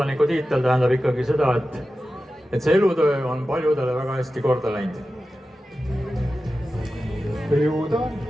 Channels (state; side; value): normal; both; correlation 0.93